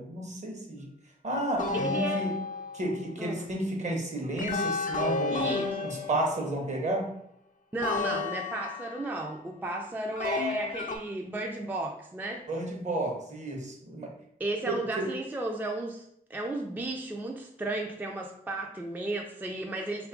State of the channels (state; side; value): normal; both; correlation 0.37